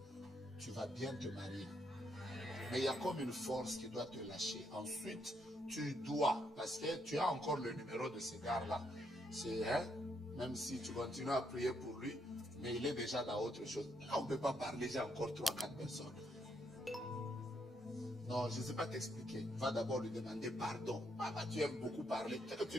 tu vas bien te marier. Mais il y a comme une force qui doit te lâcher. Ensuite, tu dois, parce que tu as encore le numéro de ce gars-là. C'est, même si tu continues à prier pour lui, mais il est déjà dans autre chose. Là, on ne peut pas parler, j'ai encore 3-4 personnes. Non, je ne sais pas t'expliquer. Va d'abord lui demander pardon. Papa, tu aimes beaucoup parler. Peut-être que tu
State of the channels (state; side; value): normal; both; correlation 0.76